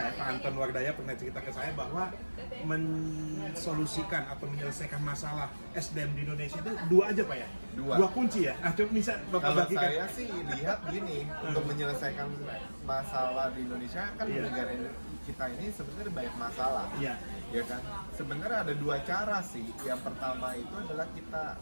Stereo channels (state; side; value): inverted; both; correlation -1.00